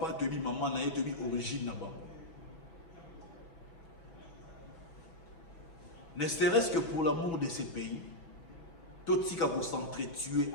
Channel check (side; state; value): right; late; 6.1 ms